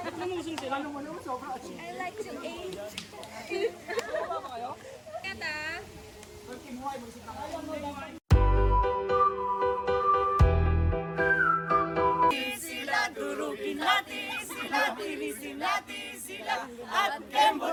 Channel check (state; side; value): identical; both; correlation 1.00